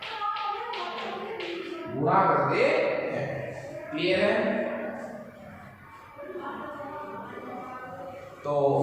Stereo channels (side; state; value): both; identical; correlation 1.00